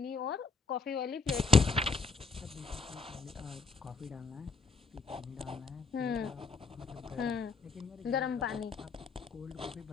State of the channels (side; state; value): right; quieter; 4.6 dB